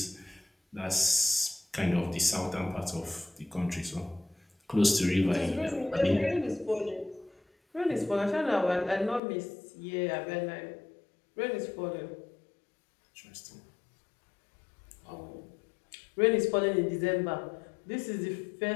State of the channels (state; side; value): drops out; right; at 9.2 s